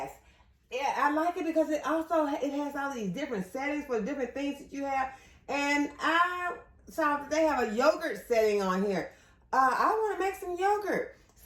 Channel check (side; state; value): both; identical; correlation 1.00